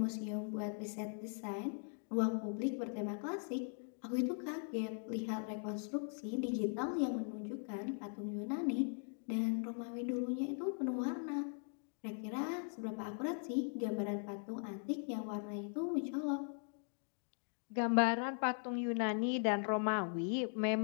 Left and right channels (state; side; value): silent; right; 51 dB below the other